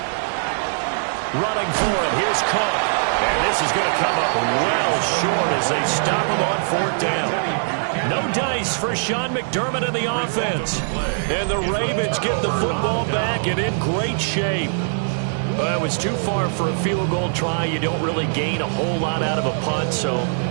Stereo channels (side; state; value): left; silent; digital silence